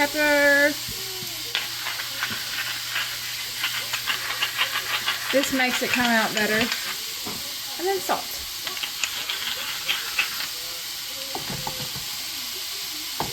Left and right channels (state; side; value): identical; both; correlation 1.00